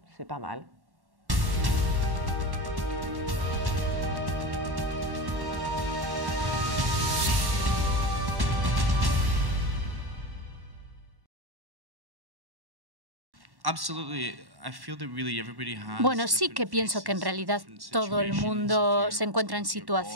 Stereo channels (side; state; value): left; late; 1.1 ms